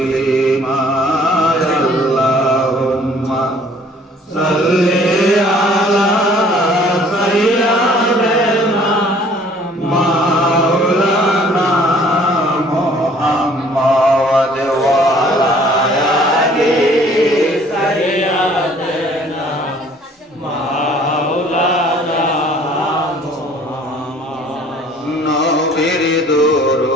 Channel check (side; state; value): both; normal; correlation 0.56